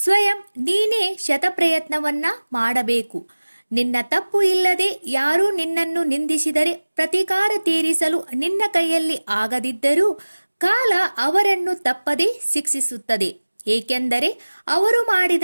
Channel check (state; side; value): inverted; both; correlation -1.00